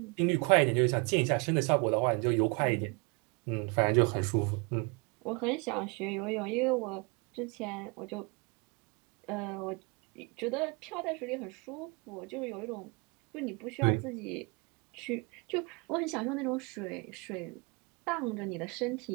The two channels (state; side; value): quieter; left; 30.4 dB